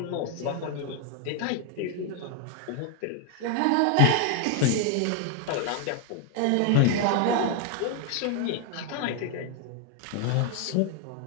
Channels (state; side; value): different; both; correlation 0.01